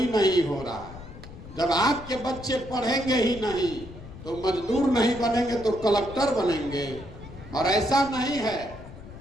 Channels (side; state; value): left; noise; rumble, 15 dB below the sound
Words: नहीं हो रहा है। जब आपके बच्चे पढ़ेंगे ही नहीं तो मजदूर नहीं बनेंगे तो कलेक्टर बनेंगे। और ऐसा नहीं है